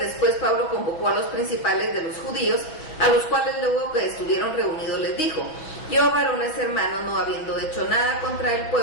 Pablo convocó a los principales de los judíos, a los cuales luego que estuvieron reunidos les dijo: yo, varones hermanos, no habiendo hecho nada contra el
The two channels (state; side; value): late; right; 6.4 ms